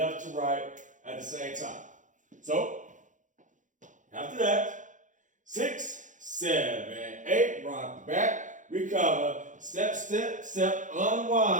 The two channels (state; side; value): late; left; 0.37 ms